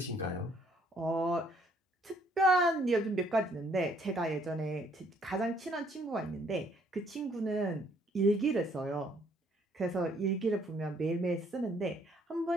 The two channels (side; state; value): both; normal; correlation 0.65